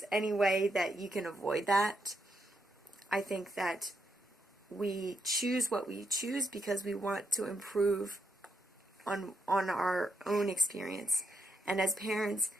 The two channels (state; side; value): normal; both; correlation 0.79